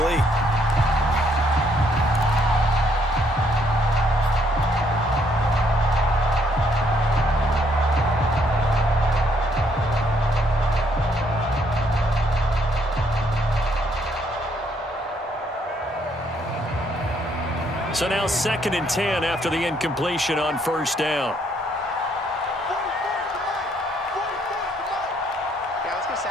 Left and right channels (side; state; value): both; normal; correlation 0.70